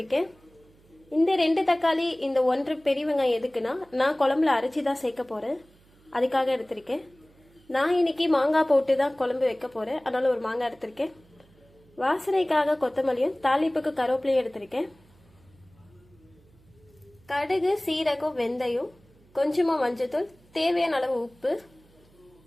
இந்த 2 தக்காளி இந்த 1 பெரிய வெங்காயம் எதுக்குன்னா நான் குழம்புல அரைச்சி தான் சேர்க்க போகிறேன், அதுக்காக எடுத்திருக்கேன். நான் இன்னைக்கு மாங்காய் போட்டு தான் குழம்பு வைக்க போகிறேன், அதனால் ஒரு மாங்காய் எடுத்திருக்கேன். வாசனைக்காக கொத்தமல்லியும் தாளிப்புக்கு கருவேப்பிலையும் எடுத்திருக்கேன். கடுகு, சீரகம், வெந்தயம், கொஞ்சமாக மஞ்சத்தூள், தேவையான அளவு உப்பு.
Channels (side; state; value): right; noise; hum, 29 dB below the sound